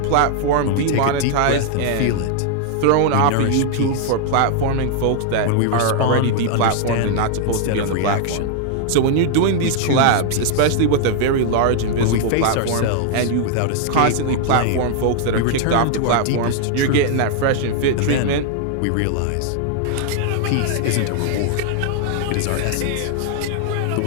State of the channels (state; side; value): different; both; correlation 0.00